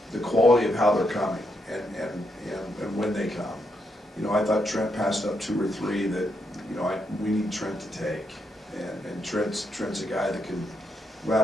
quality of how they're coming and when they come. I thought Trent passed up 2 or 3 that, we need Trent to take. And Trent's a guy that can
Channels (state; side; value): normal; both; correlation 0.80